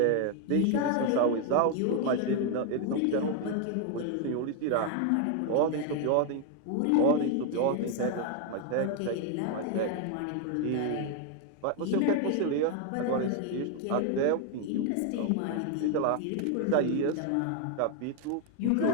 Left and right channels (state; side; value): different; both; correlation 0.01